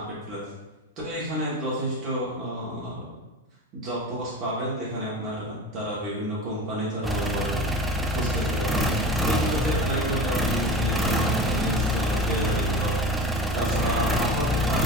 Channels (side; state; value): both; normal; correlation 0.31